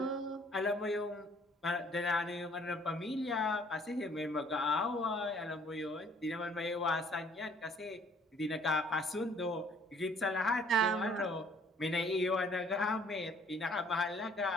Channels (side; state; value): both; normal; correlation 0.59